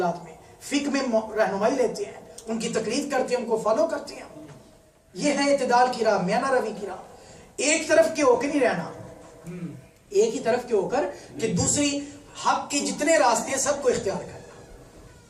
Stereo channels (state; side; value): identical; both; correlation 1.00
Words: میں، فقہ میں رہنمائی لیتے ہیں، ان کی تقلید کرتے ہیں، ان کو فالو کرتے ہیں۔ یہ ہے اعتدال کی راہ، میانہ روی کی راہ۔ ایک طرف کے ہو کے نہیں رہنا، ایک ہی طرف کے ہو کر کہ دوسری حق کے جتنے راستے ہیں سب کو اختیار